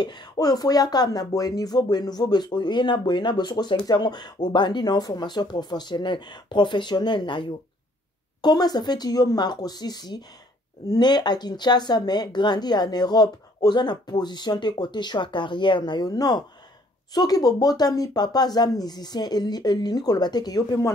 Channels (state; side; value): normal; both; correlation 0.61